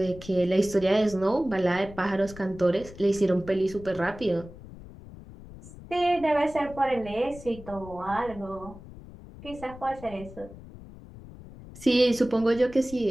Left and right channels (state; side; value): noise; left; rumble, 16 dB below the sound